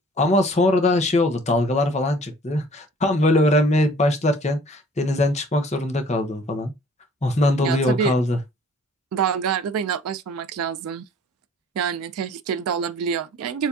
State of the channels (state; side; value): normal; both; correlation 0.52